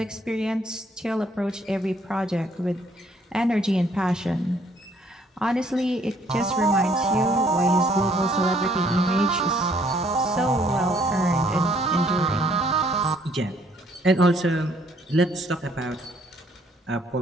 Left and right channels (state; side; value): normal; both; correlation 0.64